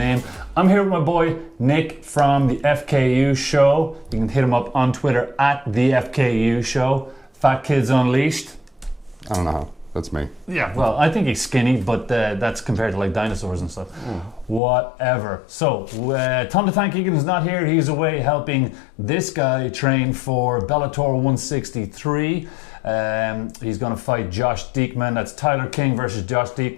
I'm here with my boy Nick from the FKU Show. You can hit him up on Twitter at the FKU Show. Fat Kids Unleashed. I don't know how. That's me. Yeah, well, I think he's skinny, but that's compared to like dinosaurs and stuff. Whatever. So, Tom the Tank Egan is not here. He's away helping this guy train for Bellator 163. He's going to fight Josh Diekman. That's Tyler King versus Josh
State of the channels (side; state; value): right; drops out; at 14.6 s